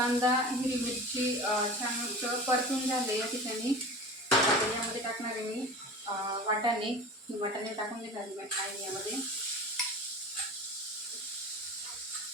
हिरवी मिरची छान परतून झाले या ठिकाणी. यामध्ये टाकणार आहे मी वाटाणे टाकून घेणार आहे यामध्ये.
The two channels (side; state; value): both; normal; correlation 0.35